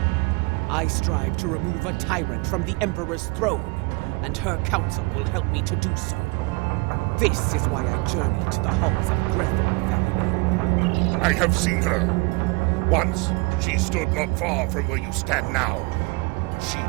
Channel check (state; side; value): quieter; left; 27.6 dB